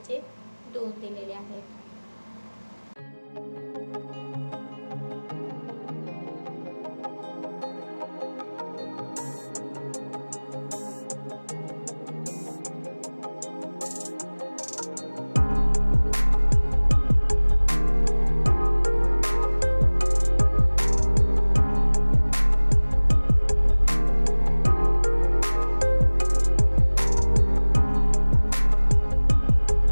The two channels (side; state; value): both; inverted; correlation -1.00